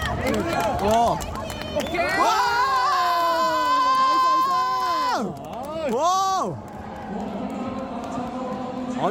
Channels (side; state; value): both; identical; correlation 1.00